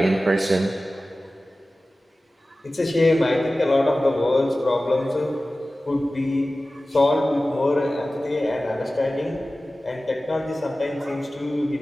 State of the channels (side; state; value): both; normal; correlation 0.96